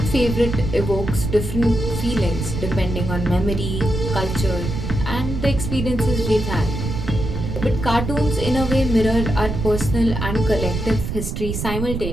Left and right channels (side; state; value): right; noise; rumble, 4 dB below the sound